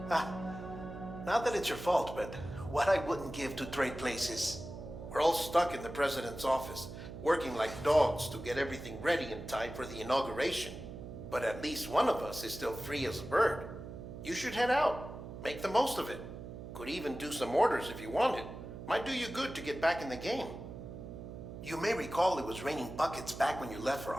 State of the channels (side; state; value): right; noise; hum, 10 dB below the sound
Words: Not that it's your fault, but what I wouldn't give to trade places. We're all stuck in the president's office, working like dogs to get everything ready in time for the inauguration. But at least one of us is still free as a bird. You should head out. Make the most of it. Could even do some orders if you wanted. Might do you good to get back in the game. You may recall it was raining buckets back when you left for